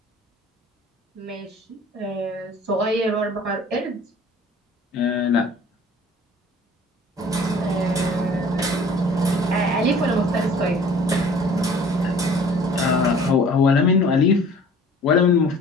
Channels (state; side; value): normal; both; correlation 0.49